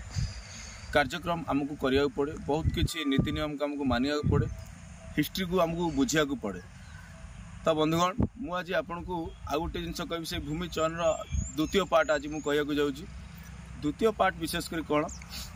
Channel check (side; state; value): both; identical; correlation 1.00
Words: कार्यक्रम आमको करिया पड़े, बहुत किसी नीति नियम को आमको मानिया पड़े, हिस्ट्री को आमको बुझिया पड़े। तो बंधुगण मु आज आपन को आउ गोटे जिन कह से भूमि चयन द्वितीय पार्ट आज मुझे कहूँ जाऊँगी। द्वितीय पार्ट विशेषकर कौन